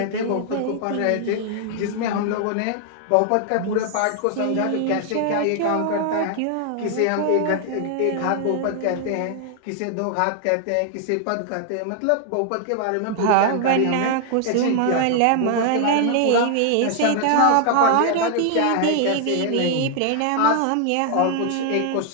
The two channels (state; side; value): different; both; correlation 0.00